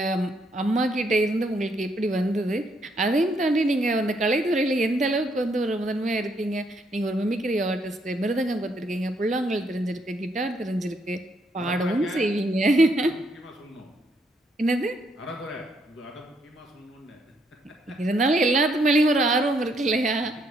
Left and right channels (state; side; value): normal; both; correlation 0.73